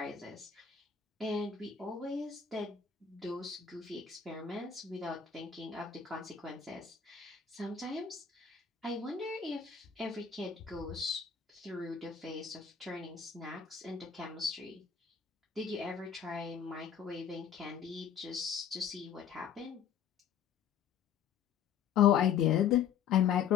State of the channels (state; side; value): quieter; right; 7.7 dB